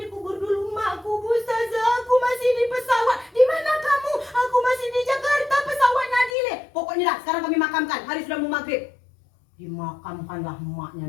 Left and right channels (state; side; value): drops out; right; at 6.4 s